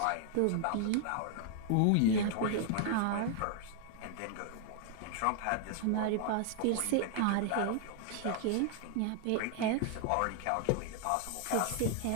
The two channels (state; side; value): different; both; correlation 0.00